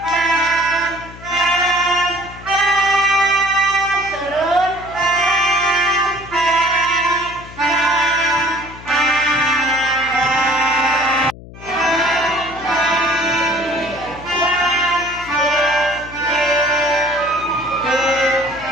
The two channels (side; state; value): left; noise; hum, 17 dB below the sound